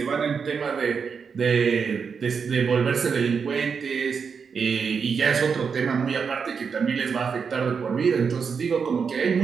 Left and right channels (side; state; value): left; quieter; 6.0 dB